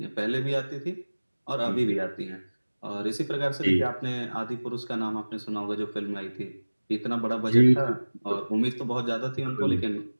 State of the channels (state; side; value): inverted; both; correlation -1.00